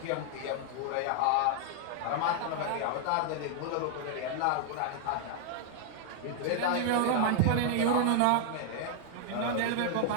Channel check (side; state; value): both; different; correlation 0.00